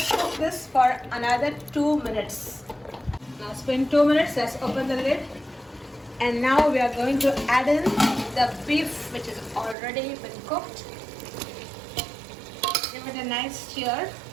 cook this for another 2 minutes. Now it's been 2 minutes. Let's open the lid. And now we are going to add in the beef which is already been cooked. Give it a nice stir.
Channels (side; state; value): left; drops out; at 9.8 s